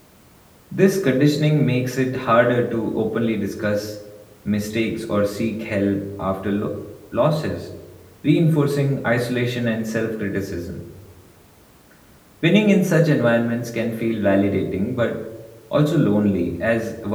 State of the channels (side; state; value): both; identical; correlation 1.00